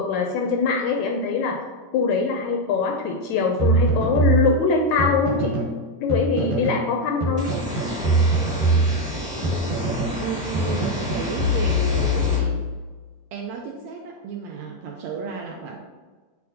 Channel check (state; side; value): normal; both; correlation 0.03